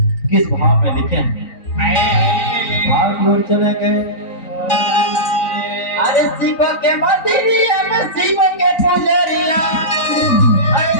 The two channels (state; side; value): late; right; 3.9 ms